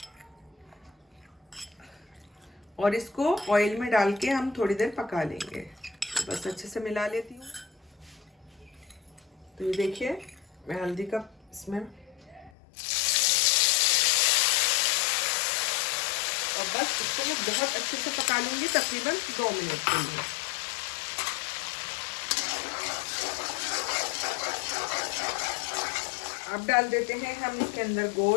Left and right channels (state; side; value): drops out; right; at 12.5 s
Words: और इसको ऑयल में डाल के हम थोड़ी देर पका लेंगे। तो बस अच्छे से मिला लेती हूँ। तो ये देखिए मैं हल्दी का इसमें, और बस इसको मैं बहुत अच्छे से पका लूंगी, तकरीबन 2 मिनट के लिए। अब डाल देते हैं हम इसके अंदर